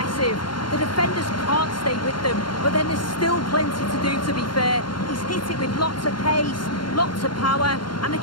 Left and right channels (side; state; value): right; late; 0.72 ms